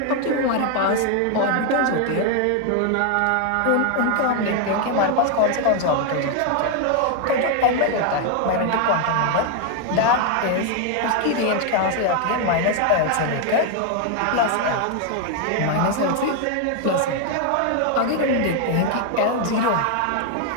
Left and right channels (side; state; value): both; different; correlation 0.01